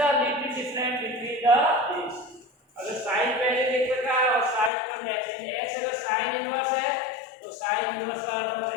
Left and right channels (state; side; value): drops out; right; at 4.7 s